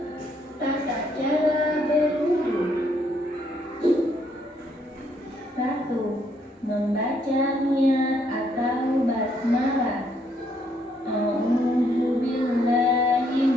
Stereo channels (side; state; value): both; normal; correlation 0.71